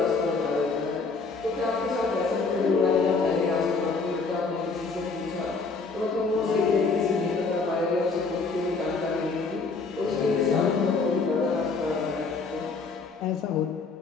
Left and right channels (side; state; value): right; quieter; 4.3 dB